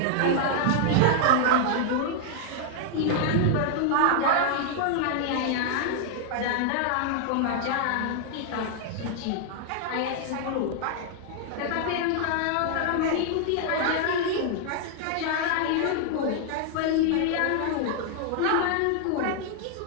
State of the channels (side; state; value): both; different; correlation 0.00